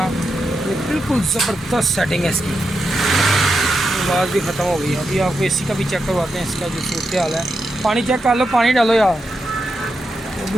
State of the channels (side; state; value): both; normal; correlation 0.86